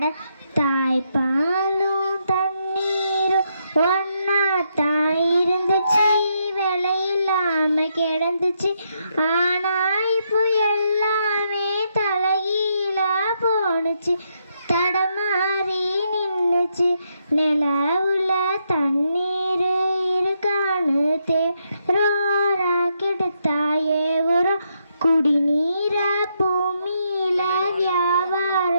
தாய்ப்பாலும் தண்ணீரும் ஒன்னா தாய் இருந்துச்சு, விலையில்லாம கிடந்துச்சு. ஆனா இப்போ எல்லாமே தலைகீழா போனுச்சு, தடமாறி நின்னுச்சு. நிலவுல தண்ணீர் இருக்கான்னு தேரோரா கெடுத்தாயே உரம். குடிநீர பூமியில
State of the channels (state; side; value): inverted; both; correlation -0.78